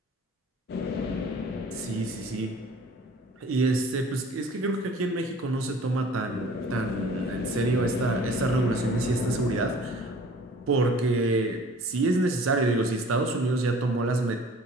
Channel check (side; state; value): both; normal; correlation 0.49